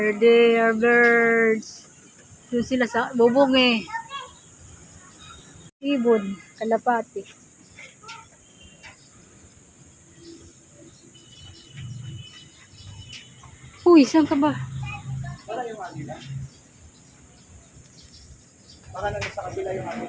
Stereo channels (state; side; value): identical; both; correlation 1.00